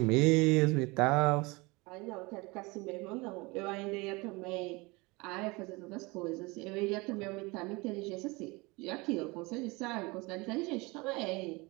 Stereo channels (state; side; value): quieter; left; 25.1 dB